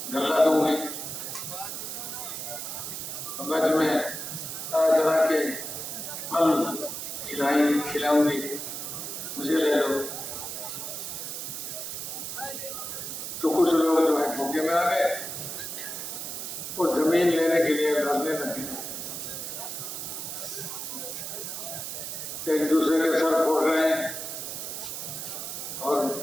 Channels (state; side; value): noise; right; hiss, 6 dB below the sound